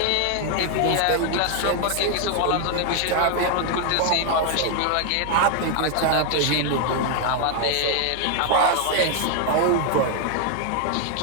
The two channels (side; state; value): both; different; correlation 0.00